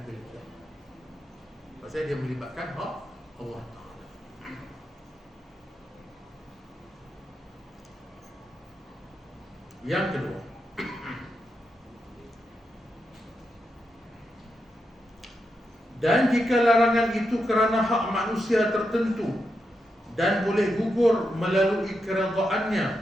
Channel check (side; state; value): both; normal; correlation 0.85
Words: kira. Pasal dia melibatkan hak Allah Ta'ala. Yang kedua, dan jika larangan itu kerana hak manusia tertentu dan boleh gugur melalui